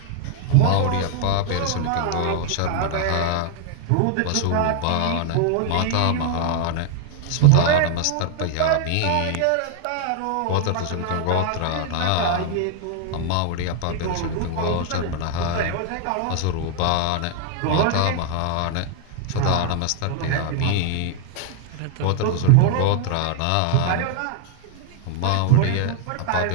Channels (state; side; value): different; both; correlation 0.00